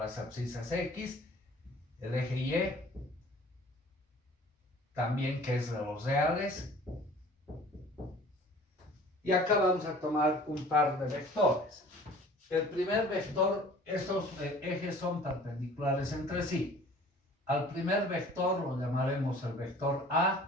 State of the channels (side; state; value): both; normal; correlation 0.48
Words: abscisas X, el eje Y, también que es de los reales. Y acá vamos a tomar un par de vectores. El primer vector, estos ejes son perpendiculares entre sí. Al primer vector lo llamaremos el vector